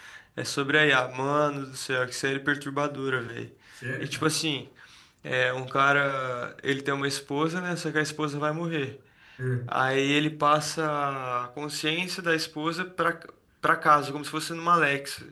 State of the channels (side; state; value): both; identical; correlation 1.00